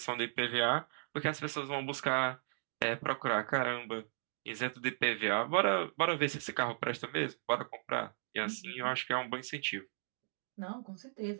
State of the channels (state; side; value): silent; left; digital silence